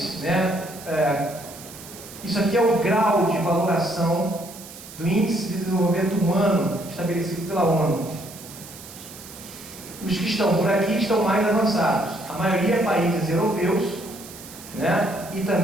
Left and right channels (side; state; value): right; noise; hiss, 16 dB below the sound